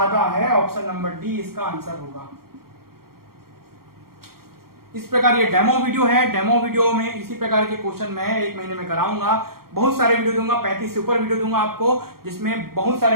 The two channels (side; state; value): left; late; 0.93 ms